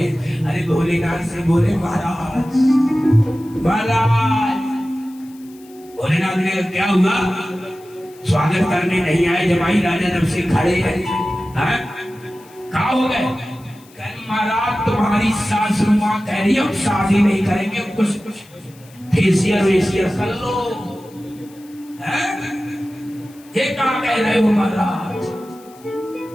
अरे भोलेनाथ से बोले, महाराज महाराज। भोलेनाथ ने क्या हुआ? स्वागत करने नहीं आए, जमाई राजा जब से खड़े हैं। कहा हो गए? महाराज तुम्हारी सासू माँ कह रही है शादी नहीं करेंगे, कुछ फेसियल वेसियल कर लो। ये क्या कह रहे हो महाराज?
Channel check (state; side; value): noise; left; hiss, 26 dB below the sound